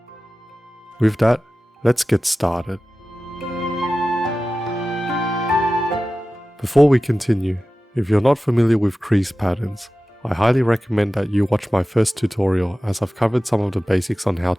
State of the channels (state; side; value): normal; both; correlation 0.95